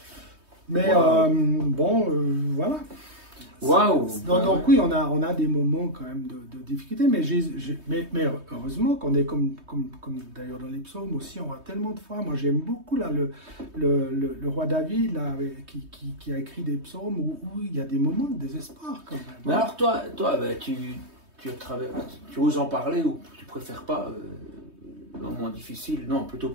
Bon, voilà. Mais voilà. Waouh! Donc oui, on a des moments quand même de difficulté, mais heureusement qu'on est comme d'ailleurs dans les psaumes aussi, on a tellement de fois. Moi, j'aime beaucoup là le roi David là, qui a écrit des psaumes où il y a des moments de désespoir quand même. Mais alors toi tu oses en parler ou tu préfères pas le moment difficile? Non, plutôt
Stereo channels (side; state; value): left; late; 3.2 ms